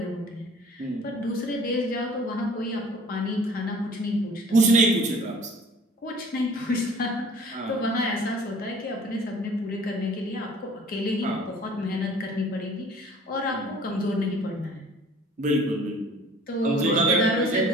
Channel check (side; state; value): both; normal; correlation 0.50